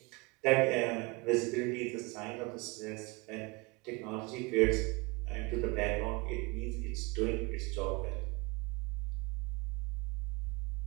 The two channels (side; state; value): left; quieter; 27.0 dB